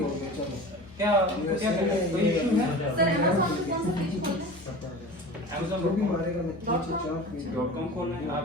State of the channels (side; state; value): both; normal; correlation 0.35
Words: गया। चलो क्या क्या कोई इशू है सर अमेज़न पे कौन सा पेज खोलना है? Amazon जो भी मारेगा मैं नीचे चाप .com खोलना है आप,